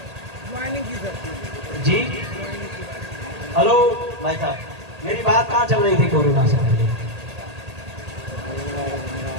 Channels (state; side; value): late; left; 1.8 ms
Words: जी? हेलो भाई साहब, मेरी बात कहाँ चल रही थी कोरोना से पहले?